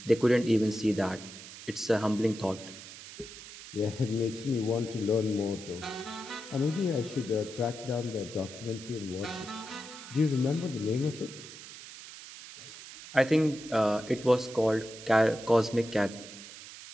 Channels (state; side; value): noise; right; hiss, 14 dB below the sound